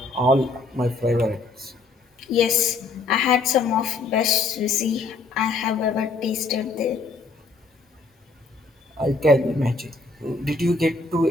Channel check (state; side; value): quieter; right; 3.7 dB